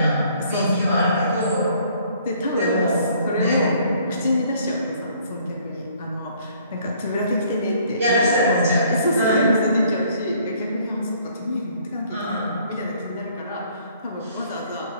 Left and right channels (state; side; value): inverted; both; correlation -0.61